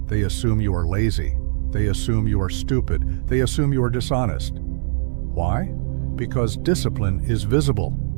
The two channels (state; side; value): silent; left; digital silence